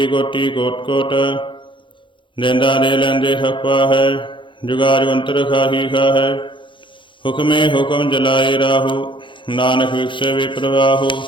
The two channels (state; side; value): late; right; 0.24 ms